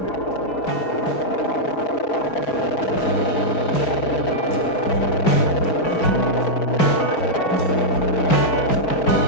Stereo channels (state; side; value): late; right; 5.4 ms